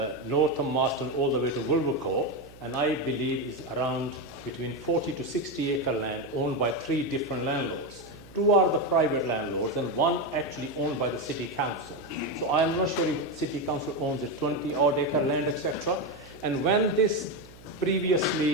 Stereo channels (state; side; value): noise; right; hum, 21 dB below the sound